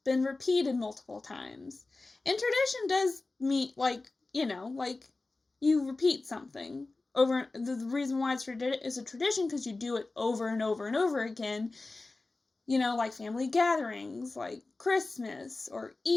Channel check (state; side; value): quieter; right; 3.4 dB